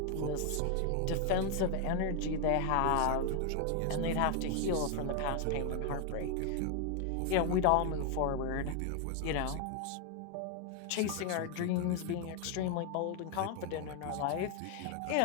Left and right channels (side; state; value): both; different; correlation 0.01